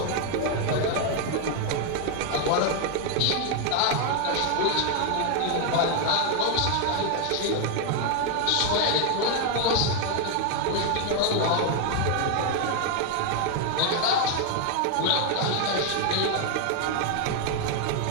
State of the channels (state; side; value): different; both; correlation 0.01